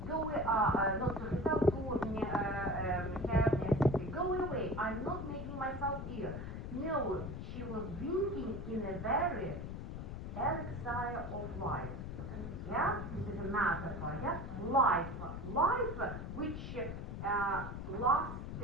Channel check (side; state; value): left; noise; rumble, 6 dB below the sound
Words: Not to herself, to her sister. Go away. I'm not making myself ill. No, she was drinking in a very elixir of life. Yeah, this is a metaphor. Yeah, life, which